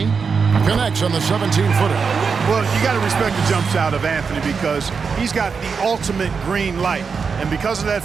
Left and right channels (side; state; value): left; quieter; 5.5 dB